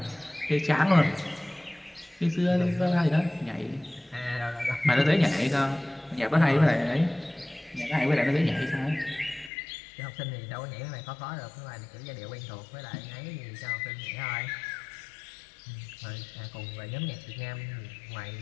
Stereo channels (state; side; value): drops out; right; at 9.5 s